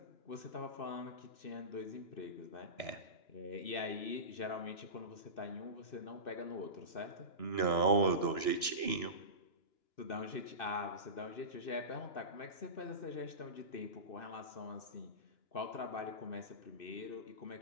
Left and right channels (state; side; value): late; right; 2.9 ms